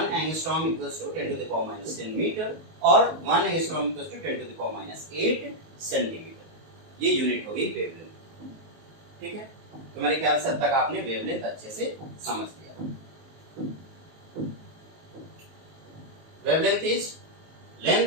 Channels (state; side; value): late; left; 19 ms